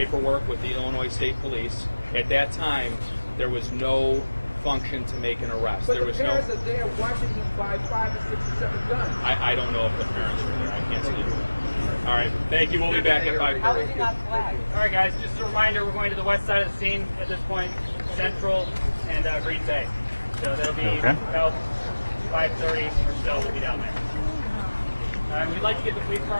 with the Illinois State Police. At that time, there was no function to make an arrest. But there was the no. parents are there watching him buy 5 or 6 or 7 guns. I don't know if the parents were there. I can't speak to that. All right. Thank you. We'll be back at 5:30. How was he not flagged? All right, guys, just a reminder, we're going to the west side of the scene at this point, Central and Green Bay. So that'll be about 5:30 or so, we'll be down there. We'd like to get the police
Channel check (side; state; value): both; inverted; correlation -1.00